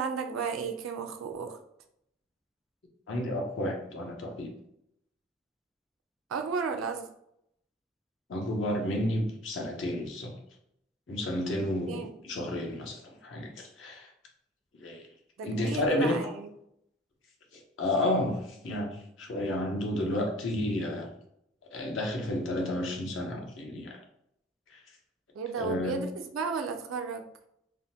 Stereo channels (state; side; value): normal; both; correlation 0.42